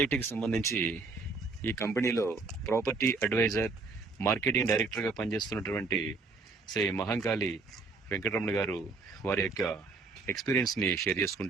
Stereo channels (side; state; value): left; quieter; 4.0 dB